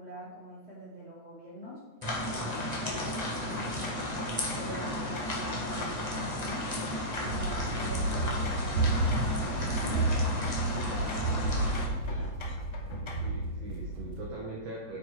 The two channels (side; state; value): left; late; 8.1 ms